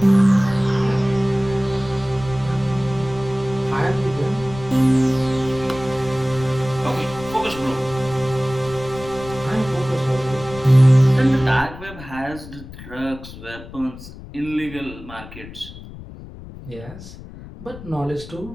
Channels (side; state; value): left; noise; rumble, 15 dB below the sound